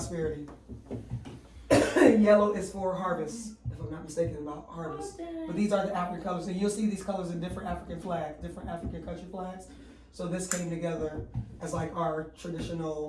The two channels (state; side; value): identical; both; correlation 1.00